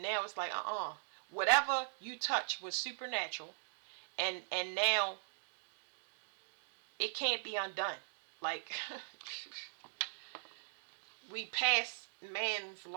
now it's like whatever you touch was supernatural, and now it can't be undone. Like we pass man's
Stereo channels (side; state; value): left; silent; digital silence